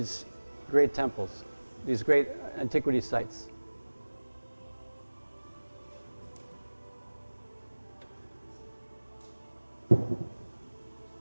great temples, these great antiquity sites.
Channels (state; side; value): inverted; both; correlation -1.00